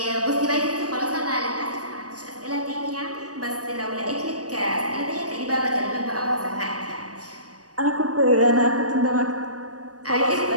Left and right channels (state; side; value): late; left; 0.67 ms